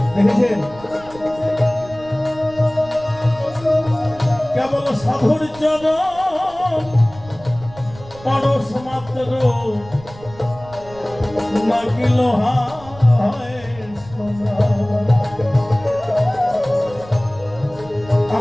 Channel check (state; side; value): noise; right; rumble, 19 dB below the sound